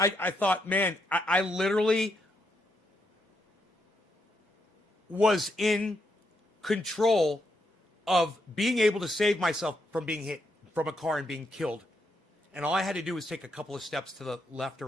thought, man, I literally was in control of being able to save myself from being hit from a car and being killed. And all I had to do was take a couple of steps to the left or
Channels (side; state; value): both; normal; correlation 0.79